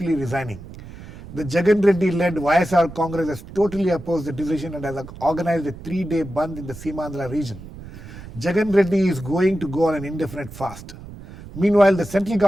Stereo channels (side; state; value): right; noise; rumble, 15 dB below the sound